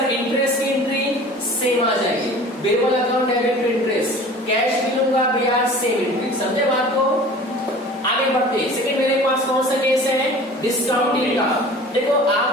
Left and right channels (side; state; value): both; normal; correlation 0.43